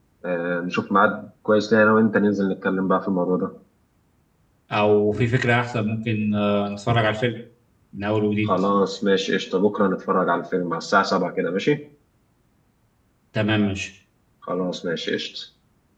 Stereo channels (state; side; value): identical; both; correlation 1.00